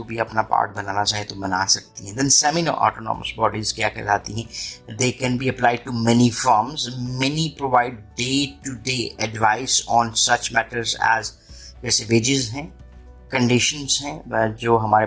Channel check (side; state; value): both; identical; correlation 1.00